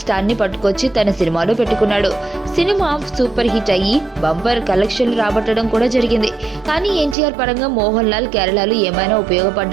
ని పట్టుకొచ్చి తన సినిమాలో పెట్టుకున్నాడు. సినిమా సూపర్ హిట్ అయ్యి బంపర్ కలెక్షన్లు రాబట్టడం కూడా జరిగింది. కానీ ఎన్టీఆర్ పరంగా మోహన్ లాల్ కేరళలో ఏమైనా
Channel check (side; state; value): left; drops out; at 7.2 s